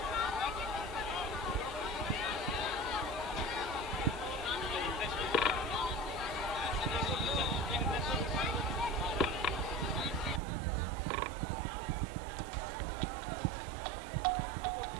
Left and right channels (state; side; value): drops out; left; at 10.4 s